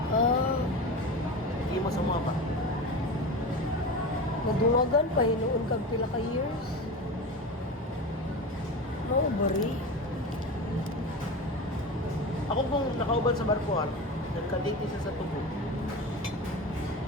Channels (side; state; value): both; normal; correlation 0.27